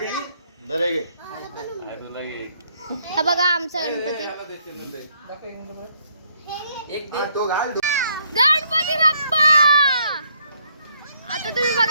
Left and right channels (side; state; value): both; inverted; correlation -0.70